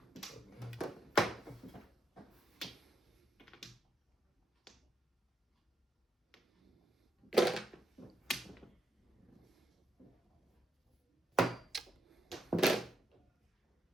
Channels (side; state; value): both; normal; correlation 0.80